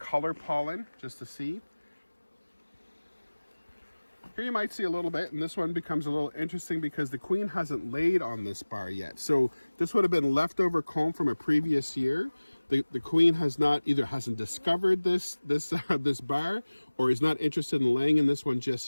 pollen just to see. Here you might see a little bit, and this one becomes a little interesting because the queen hasn't laid on this bar yet. So this would have been leftover comb from a previous year. The queen has not either hasn't discovered this bar or is not interested in laying in this one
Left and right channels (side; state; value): both; inverted; correlation -1.00